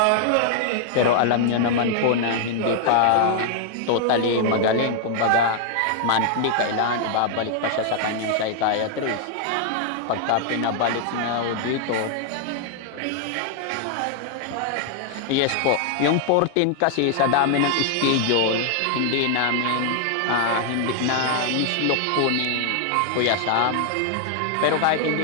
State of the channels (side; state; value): both; different; correlation 0.00